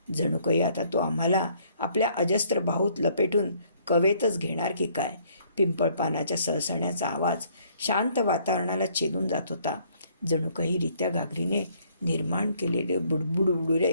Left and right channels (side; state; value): both; inverted; correlation -0.64